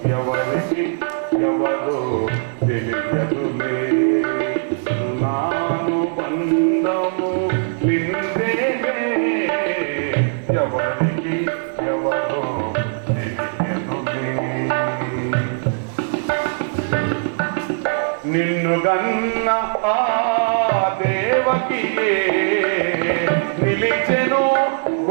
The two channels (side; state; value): left; silent; digital silence